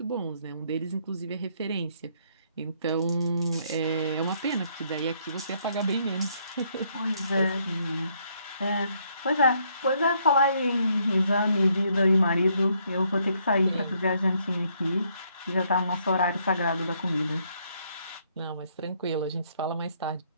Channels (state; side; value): inverted; both; correlation -0.70